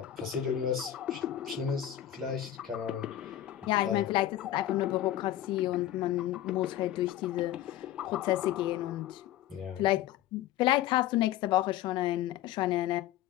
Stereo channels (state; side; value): quieter; right; 12.6 dB